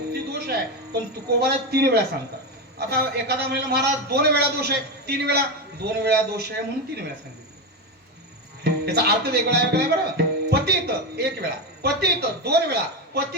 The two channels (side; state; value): both; normal; correlation 0.14